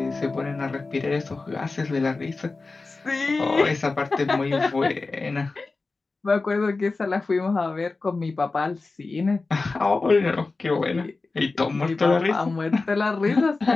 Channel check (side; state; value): right; quieter; 3.7 dB